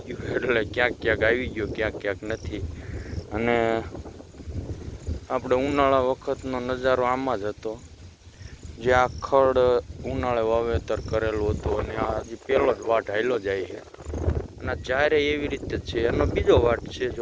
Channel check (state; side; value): identical; both; correlation 1.00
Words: ગયું. એટલે ક્યાંક આવી ગયો, ક્યાંક નથી. અને આપણે ઉનાળા વખતનો નજારો આમાં જ હતો, જે આ ખડ ઉનાળે વાવેતર કરેલું હતું. અને આ હજી પહેલો જ વાટ હાલ્યો જાય છે, અને જ્યારે એવી રીતે છે. એનો બીજો વાટ છે